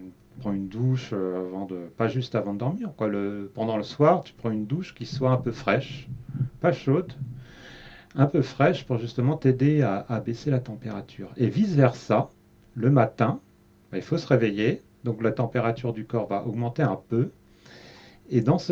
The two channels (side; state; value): both; identical; correlation 1.00